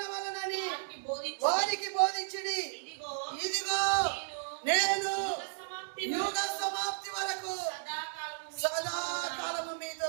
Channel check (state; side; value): silent; left; digital silence